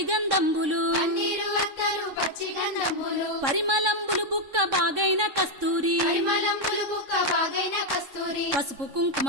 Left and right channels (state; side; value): late; left; 3.6 ms